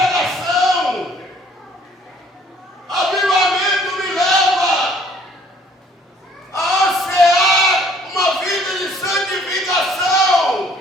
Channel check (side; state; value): both; normal; correlation 0.59